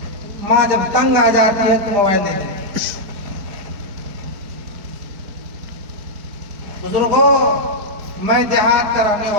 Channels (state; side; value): late; left; 4.5 ms